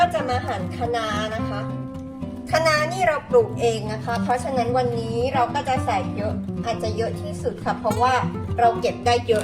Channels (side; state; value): both; identical; correlation 1.00